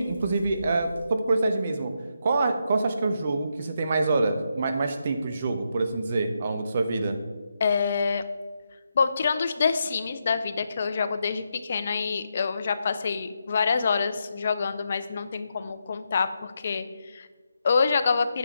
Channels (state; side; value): inverted; both; correlation -0.83